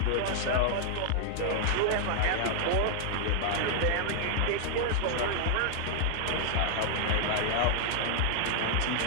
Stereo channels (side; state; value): both; different; correlation 0.00